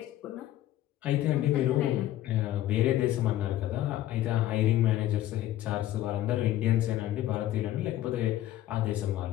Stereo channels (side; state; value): right; quieter; 13.7 dB